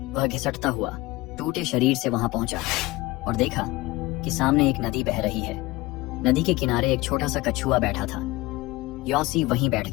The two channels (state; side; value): quieter; right; 20.6 dB